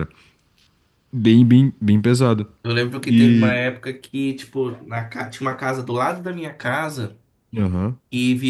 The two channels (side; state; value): both; identical; correlation 1.00